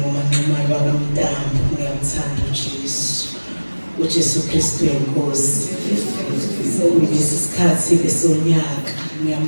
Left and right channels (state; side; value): inverted; both; correlation -1.00